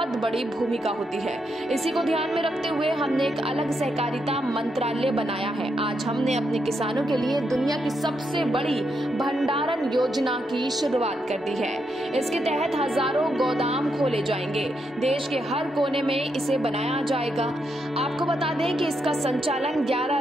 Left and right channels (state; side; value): normal; both; correlation 0.81